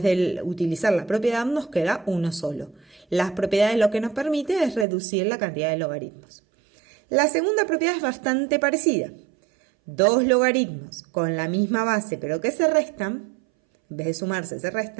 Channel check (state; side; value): drops out; left; at 4.9 s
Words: de utilizar la propiedad nos queda uno solo. Las propiedades lo que nos permite es reducir la cantidad de logaritmos. La segunda propiedad es bastante parecida. Dos logaritmos con la misma base pero que se restan, en vez de sumarse se